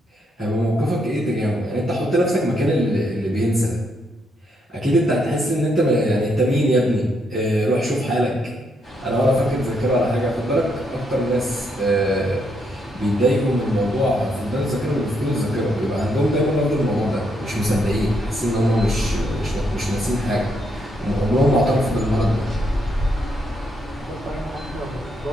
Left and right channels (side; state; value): both; normal; correlation 0.76